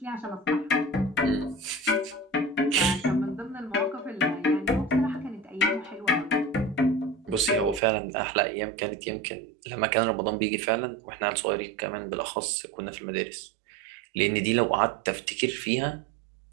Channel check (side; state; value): left; drops out; at 7.8 s